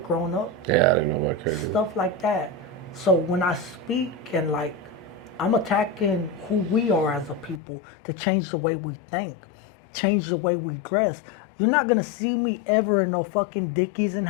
growing up. Yeah, I didn't know about credit. Stuff like that. So when I speak and like, I'm attacking who we are as a people to change the way we think, change the way we dress. You're not gonna see me ever in no fucking Dickies and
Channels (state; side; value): drops out; right; at 7.6 s